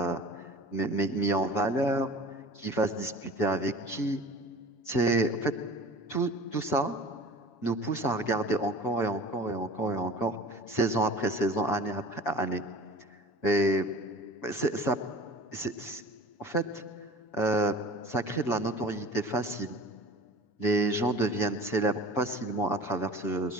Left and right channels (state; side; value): late; right; 6.3 ms